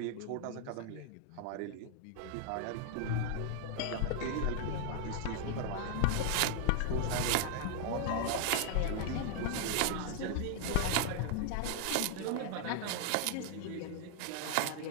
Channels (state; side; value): different; both; correlation 0.00